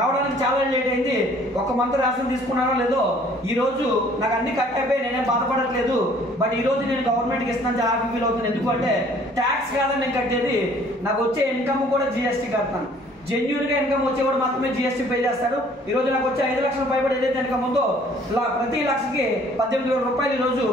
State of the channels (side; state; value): both; normal; correlation 0.56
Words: చాలా లేట్ అయింది. ఒక మంత్ రేషన్ తీసుకున్నానో లేదో ఈ రోజు నాకు అన్ని కట్ అయిపోయి నేనేం బాధపడట్లేదు. బట్ ఈ రోజు నేను గవర్నమెంట్కి ఇస్తున్నాను, చాలా హ్యాపీ ఫీల్ అవుతున్నాను. ఎందుకంటే ట్యాక్స్ కాదని నేను కట్టేది, నాకు వచ్చే ఇన్కమ్ కూడా GST కడతాను. జెన్యూన్ గా ఇన్కమ్ వచ్చేవాడు మాత్రమే GST పే చేస్తాడు. ఈ రోజు నాకు వచ్చే 5 లక్షల పైబడి ఏదైతే ఇన్కమ్ ఉందో ప్రతి లక్షకి 18,000 రూపాయలు ఈ రోజు